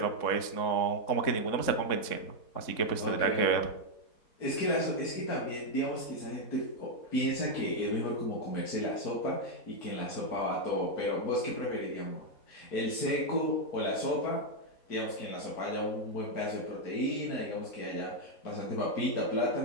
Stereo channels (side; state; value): right; late; 3.7 ms